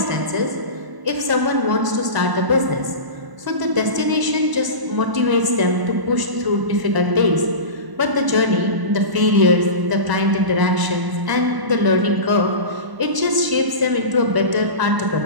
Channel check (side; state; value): left; late; 1.0 ms